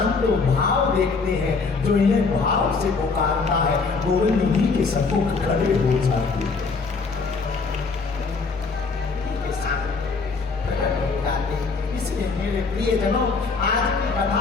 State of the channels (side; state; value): right; quieter; 4.5 dB